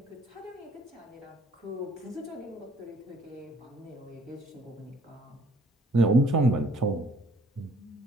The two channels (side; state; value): both; normal; correlation 0.59